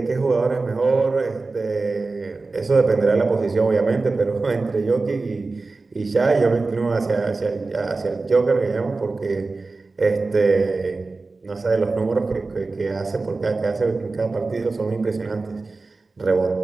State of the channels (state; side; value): quieter; left; 3.7 dB